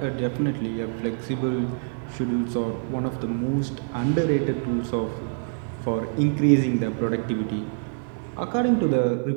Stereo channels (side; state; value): left; silent; 61 dB below the other